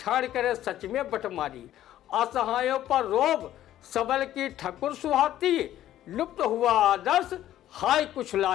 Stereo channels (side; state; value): right; quieter; 12.7 dB